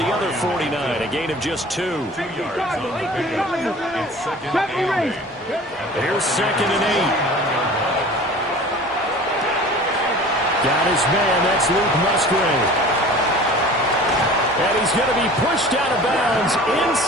other 49. A gain of just 2. 2 yards on the pickup. It's 2nd and 8. Here's 2nd and 8. Got his man. That's Luke Musgrave. And he's going to be pushed out of bounds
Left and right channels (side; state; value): both; normal; correlation 0.42